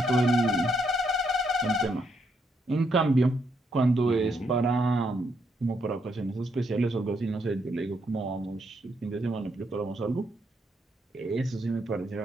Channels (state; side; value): normal; both; correlation 0.76